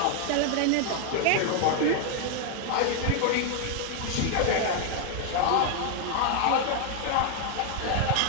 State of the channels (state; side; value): different; both; correlation 0.00